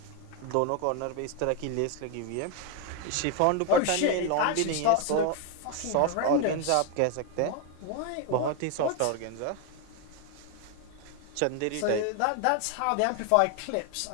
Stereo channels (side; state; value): both; different; correlation 0.01